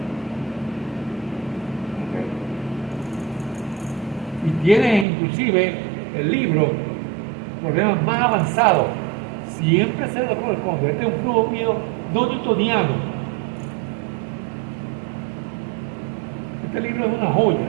¿Okay? Y tiene inclusive el libro problemas más avanzados. Siempre se lo corresponde. Este es un flujo mío no newtoniano. Este libro es una joya.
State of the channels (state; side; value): drops out; left; at 5.1 s